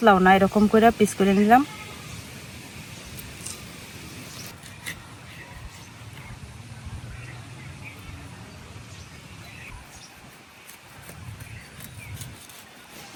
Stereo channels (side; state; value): both; identical; correlation 1.00